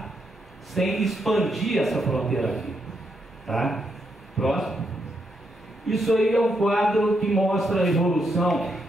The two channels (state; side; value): normal; both; correlation 0.80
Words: sem expandir essa fronteira aqui. Tá? Próximo. Isso aí é um quadro que mostra a evolução